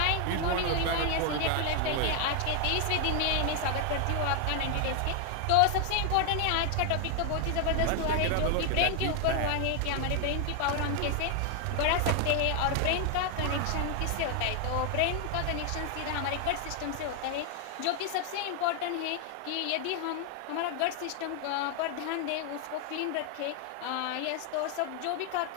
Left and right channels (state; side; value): different; both; correlation 0.00